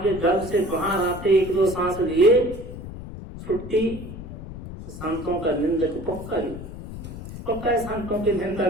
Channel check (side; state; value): left; noise; rumble, 11 dB below the sound